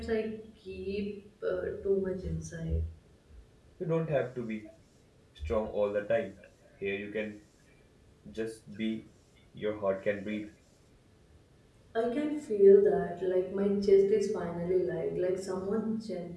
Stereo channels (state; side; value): identical; both; correlation 1.00